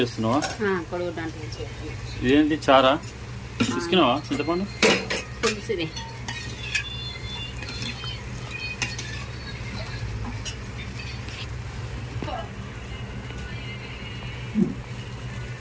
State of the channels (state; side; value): identical; both; correlation 1.00